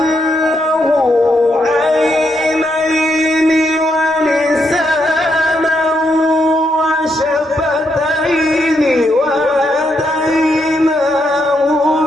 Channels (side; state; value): both; normal; correlation 0.78